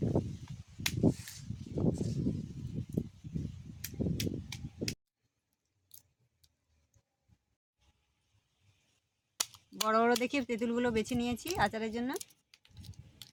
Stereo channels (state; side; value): identical; both; correlation 1.00